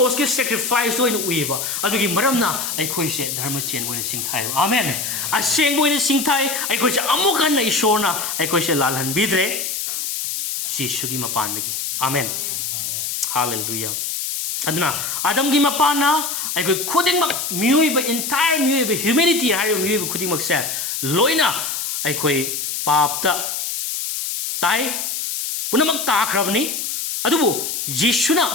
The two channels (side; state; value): left; noise; hiss, 3 dB below the sound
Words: ki sacrifice to in we ba adu gi maram na ikhoi se dharma chen bo in sing thai amen aseng bo in sing thai ikhoi se amukan na ishor na ikhoi se lalhan bidre Jesus ki mapan gi amen hallelujah aduna adam gi mapana ikhoi khuding mak miui ba entire miui ba humanity hai miui ba khuding mak se loina ikhoi pap ta tai punamak ta khrabni adubu yeshuna